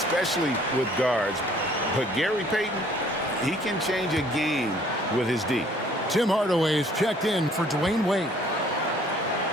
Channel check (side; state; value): both; normal; correlation 0.58